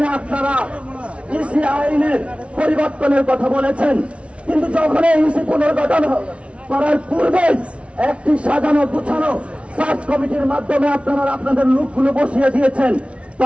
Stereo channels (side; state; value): left; late; 0.061 ms